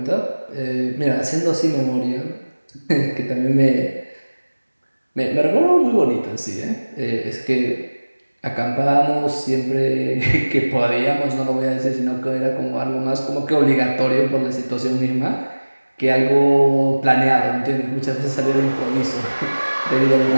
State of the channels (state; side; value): inverted; both; correlation -1.00